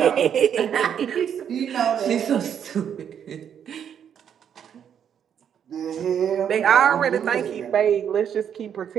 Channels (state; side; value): quieter; left; 8.5 dB